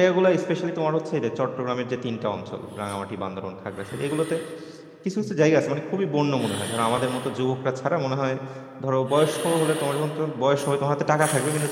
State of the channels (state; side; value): identical; both; correlation 1.00